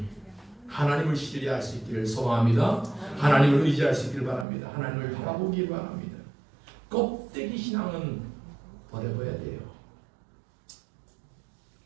하나님을 신뢰할 수 있기를 소망합니다. 하나님을 의지할 수 있기를 바랍니다. 하나님을 바라보기 바랍니다. 껍데기 신앙은 버려버려야 돼요.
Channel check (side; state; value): left; drops out; at 4.5 s